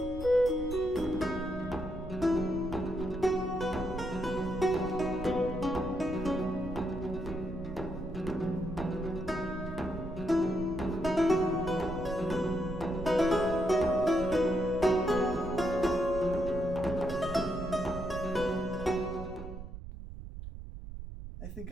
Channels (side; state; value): right; noise; rumble, 10 dB below the sound